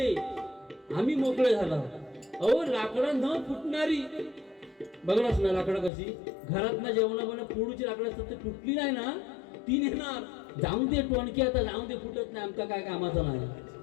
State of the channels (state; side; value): drops out; right; at 5.9 s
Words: आम्ही मोकळे झाला. अहो लाकडं न फुटणारी बघलाच ना लाकडं कशी घरात ना जेवणा फोडूची लाकडं असतात, ते फुटली नाही ना ती नेणार. जाऊन दे टोणकी, आता जाऊन दे फुटत नाही, आमका काय कामाचं नाही.